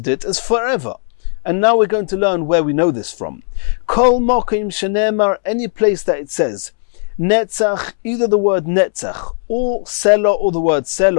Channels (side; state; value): right; silent; 69 dB below the other